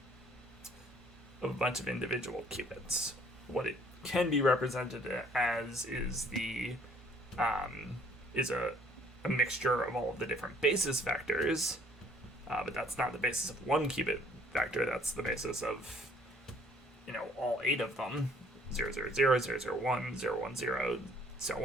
of a bunch of individual qubits. What it can be represented as is a mixture of all of the different basis vectors, but that's not the basis of one qubit vector. That's the basis of, all 8 of them, 0, 0, 0, 0, 0, 1, 0, 1, 0, so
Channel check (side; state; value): both; normal; correlation 0.60